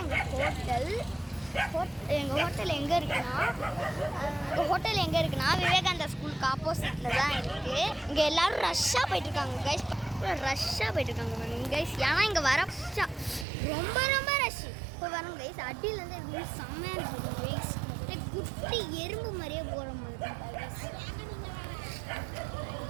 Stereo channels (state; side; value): drops out; left; at 13.5 s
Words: எங்கள் ஹோட்டல் எங்கே இருக்குன்னா விவேகானந்தா ஸ்கூலுக்கு ஆப்போசிட்டில் தான் இருக்குது. இங்கே எல்லோரும் ரஷ்ஷாக போயிட்டுருக்காங்க கைஸ். கைஸ். ஏன்னா இங்கே வர ரொம்ப ரொம்ப ரஷ். இப்போ வரோம் கைஸ். அடியிலேருந்து எதுவுமே செம்மையாக இருக்குது கைஸ். குட்டி எறும்பு மாதிரியே போகிற மாதிரி